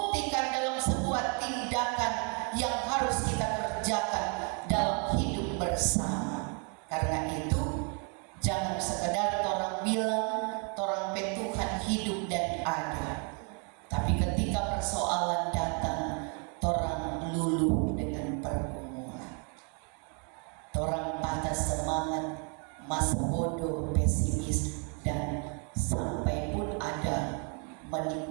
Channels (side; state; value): left; quieter; 38.1 dB